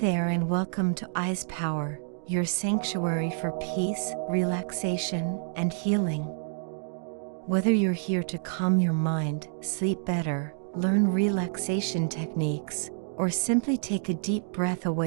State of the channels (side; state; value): left; silent; digital silence